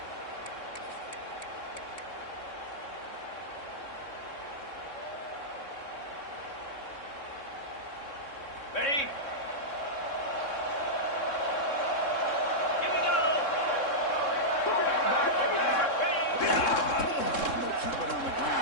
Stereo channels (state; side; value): late; right; 3.6 ms